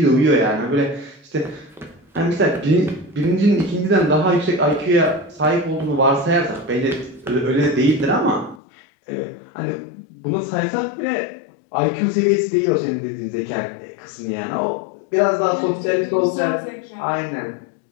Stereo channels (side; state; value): right; drops out; at 8.6 s